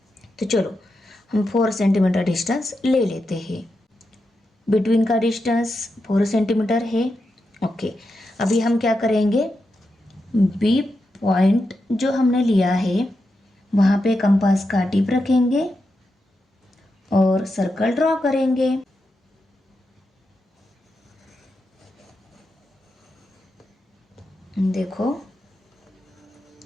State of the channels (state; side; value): normal; both; correlation 0.87